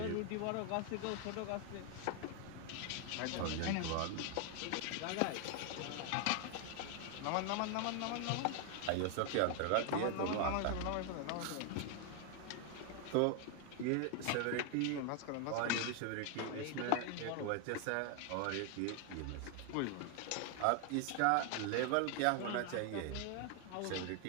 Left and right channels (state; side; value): different; both; correlation 0.00